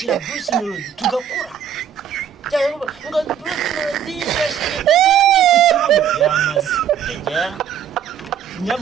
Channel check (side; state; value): left; quieter; 8.8 dB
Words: Bruce Melody tugakura cyangwa ngo Bruce Melody yashyigikiye The Ben ku kibuno yamaze yajya